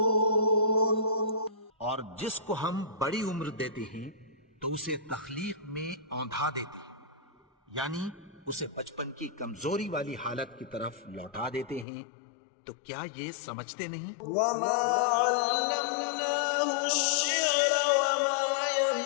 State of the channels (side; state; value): right; drops out; at 11.9 s